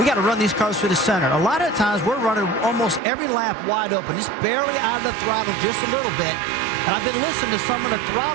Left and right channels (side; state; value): left; drops out; at 3.0 s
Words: got to run these cars through the center. A lot of times we're running almost every lap wide open, just barely out of the throttle just a little bit. And I've been listening to some of the